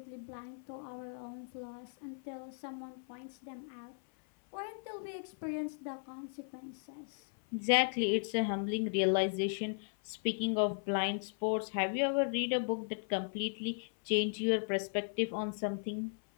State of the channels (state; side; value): silent; right; 53 dB below the other